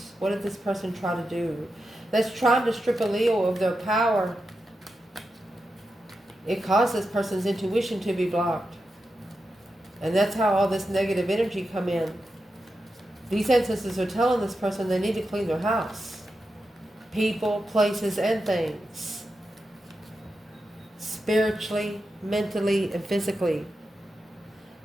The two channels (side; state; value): both; normal; correlation 0.89